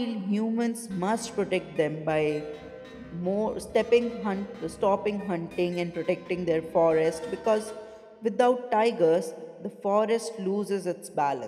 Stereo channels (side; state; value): both; identical; correlation 1.00